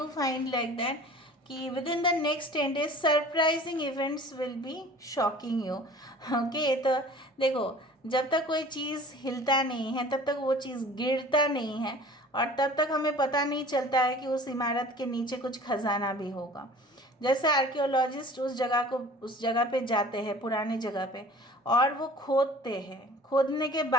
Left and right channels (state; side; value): normal; both; correlation 0.46